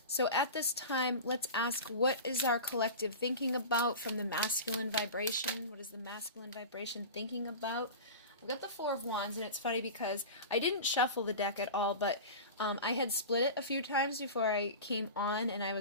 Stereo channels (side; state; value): both; inverted; correlation -0.30